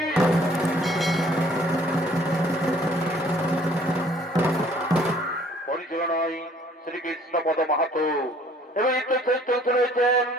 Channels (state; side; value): normal; both; correlation 0.57